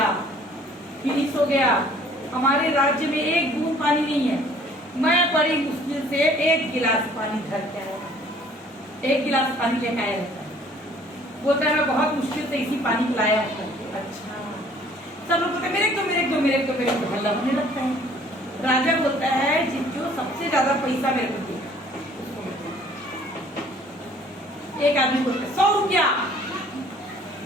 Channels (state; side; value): normal; both; correlation 0.56